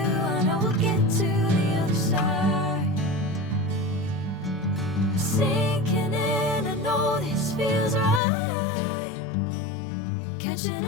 know we'll get to the other side. Sinking in, I know this feels right. Catching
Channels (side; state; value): right; drops out; at 8.2 s